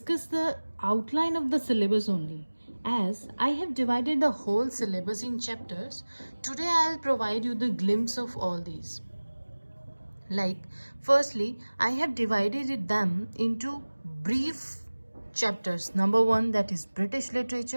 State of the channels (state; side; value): inverted; both; correlation -1.00